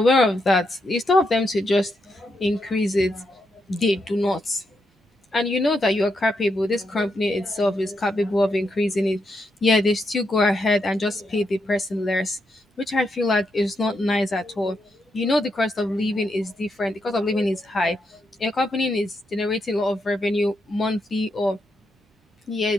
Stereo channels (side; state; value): both; normal; correlation 0.82